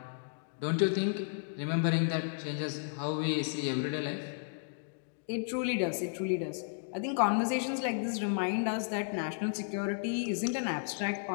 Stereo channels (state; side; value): silent; right; digital silence